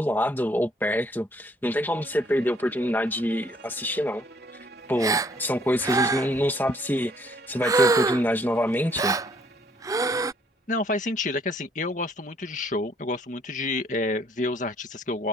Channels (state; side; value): normal; both; correlation 0.64